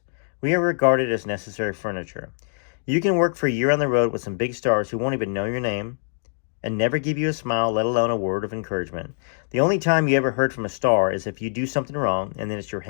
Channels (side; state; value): right; silent; digital silence